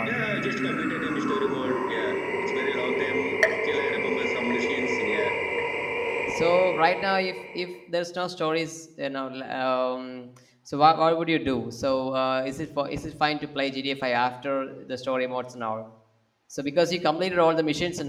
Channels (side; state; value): both; identical; correlation 1.00